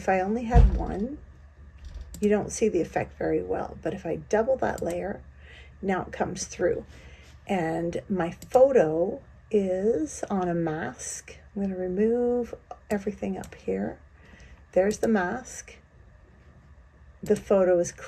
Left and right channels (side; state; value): both; identical; correlation 1.00